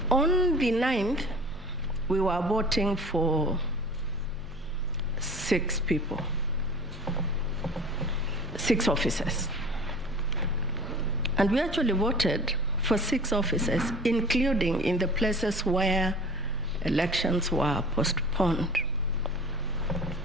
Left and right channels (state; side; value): normal; both; correlation 0.41